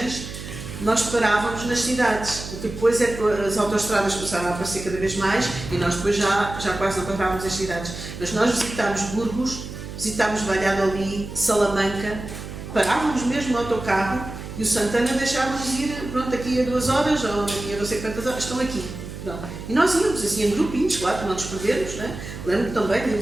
nós parávamos nas cidades, depois é que as autoestradas começaram a aparecer cada vez mais e nós depois já quase não parávamos as cidades, mas nós visitámos Burgos, visitámos Valladolid, Salamanca, parávamos mesmo no autocarro e o Santana deixava-nos ir, pronto, aqui a 2 horas ou aqui a não sei quantas horas, estão aqui. Não. E nós íamos assim em grupinhos, claro, para não nos perdermos, né? Lembro-me também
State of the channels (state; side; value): noise; right; hum, 10 dB below the sound